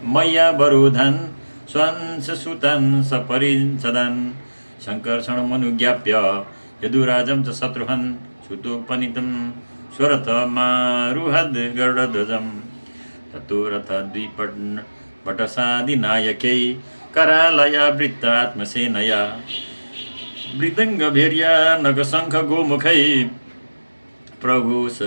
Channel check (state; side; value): inverted; both; correlation -1.00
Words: वरोधान् स्वंशसुतान् सपरिच्छदान् सङ्कर्षणमनुज्ञाप्य यदुराजं च शत्रुहन् सुतोपनीतं स्वरथमारुहद् गरुडध्वजं ततो रथद्विपटसादिनायकै करालयावृत्तात्मसेनया मृदङ्गभैर्या नखशङ्खगोमुखै